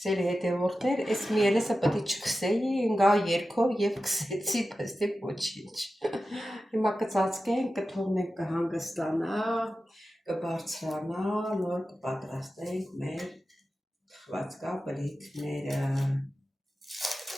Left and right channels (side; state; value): both; normal; correlation 0.93